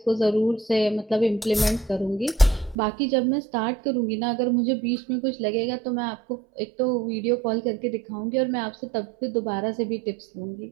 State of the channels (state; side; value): drops out; left; at 2.8 s